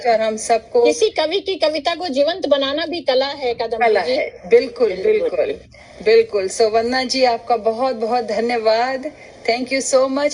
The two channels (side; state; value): both; identical; correlation 1.00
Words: और हम सबको किसी कवि की कविता को जीवंत बनाना भी कला है। कला है, बिल्कुल बिल्कुल बिल्कुल। सो वंदना जी आपका बहुत बहुत धन्यवाद। Thank you so